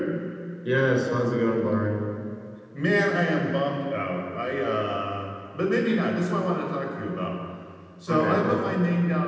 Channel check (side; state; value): both; identical; correlation 1.00